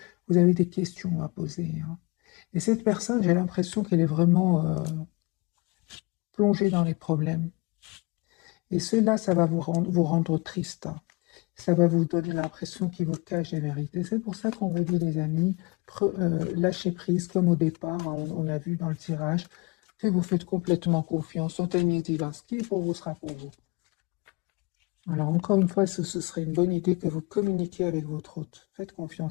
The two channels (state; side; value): quieter; right; 26.8 dB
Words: vous avez des questions à poser. Et cette personne, j'ai l'impression qu'elle est vraiment plongée dans les problèmes. Et cela, ça va vous rendre triste. Ça va vous donner l'impression qu'il vous cache les vérités. C'est pour ça qu'on vous dit, les amis, lâchez prise comme au départ, on a vu dans le tirage, que vous faites complètement confiance au timing divin. Ce qui est pour vous sera pour vous. Alors encore une fois, ce serait une bonne idée que vous communiquiez avec votre hôte. Faites